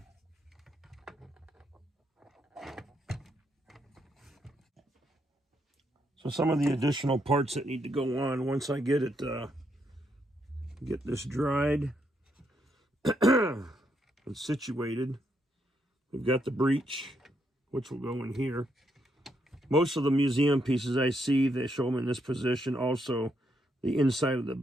So some of the additional parts that need to go on once I get it, get this dried and situated. We've got the breech, which will go in here. Most of the museum pieces I see, they show them in this position. Also, the inside of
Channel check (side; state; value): both; normal; correlation 0.77